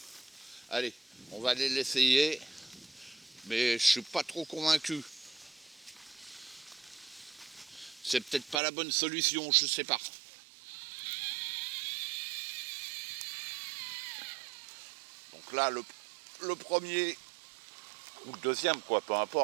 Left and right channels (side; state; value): left; drops out; at 8.6 s